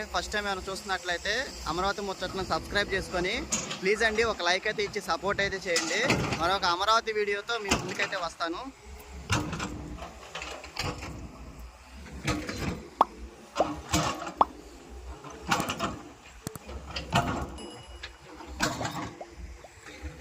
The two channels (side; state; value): both; identical; correlation 1.00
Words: ఫస్ట్ టైం ఏమైనా చూస్తున్నట్లయితే అమరావతి ముచ్చట్లను సబ్స్క్రైబ్ చేసుకొని ప్లీజ్ అండి ఒక లైక్ అయితే ఇచ్చి సపోర్ట్ అయితే చేయండి. మరొక అమరావతి వీడియోతో మీ ముందుకైతే వస్తాను.